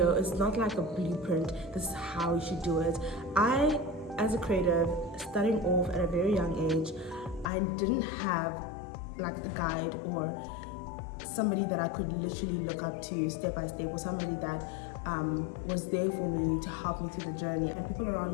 it's not like a blueprint, this is how you should do it. I, as a creative, starting off at a very young age, I didn't have like a guide or somebody that I could literally look up to step by step, or somebody that was there for me to help me through the journey. And people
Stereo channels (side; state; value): right; drops out; at 7.5 s